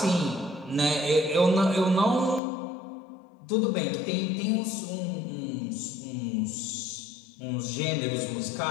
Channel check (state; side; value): drops out; right; at 2.4 s